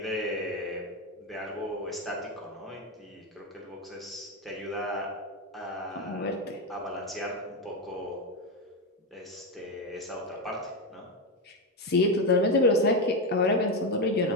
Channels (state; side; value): normal; both; correlation 0.10